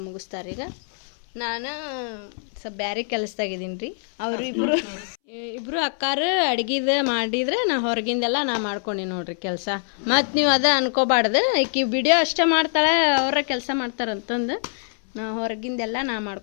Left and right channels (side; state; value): right; silent; 63 dB below the other